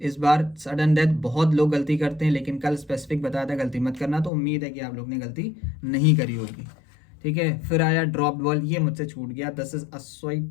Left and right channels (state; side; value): drops out; right; at 4.3 s